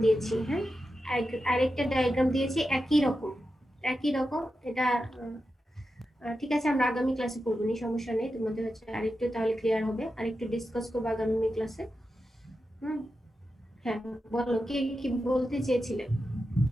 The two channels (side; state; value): both; normal; correlation 0.90